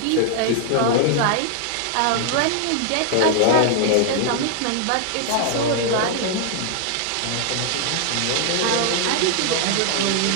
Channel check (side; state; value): both; different; correlation 0.00